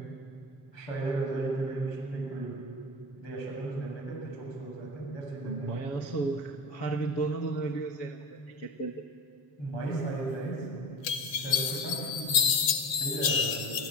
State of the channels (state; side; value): late; right; 7.3 ms